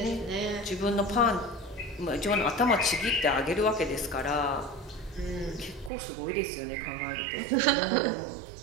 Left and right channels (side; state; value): left; drops out; at 5.9 s